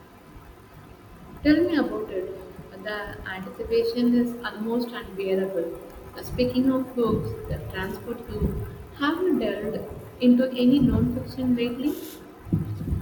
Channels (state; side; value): identical; both; correlation 1.00